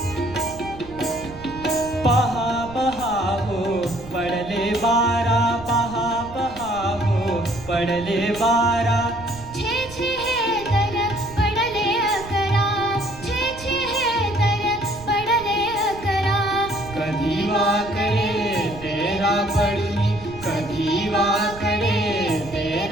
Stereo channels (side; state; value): right; noise; rumble, 16 dB below the sound